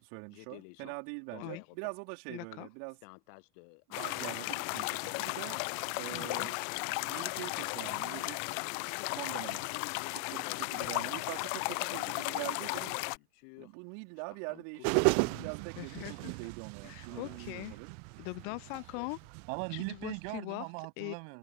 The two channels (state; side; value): different; both; correlation 0.00